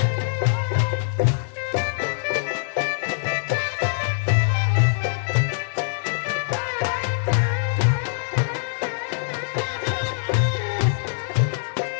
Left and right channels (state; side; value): silent; right; 63 dB below the other